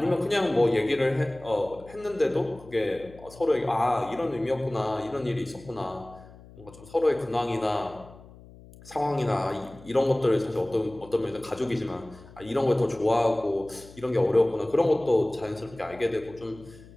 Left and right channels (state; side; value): noise; left; hum, 21 dB below the sound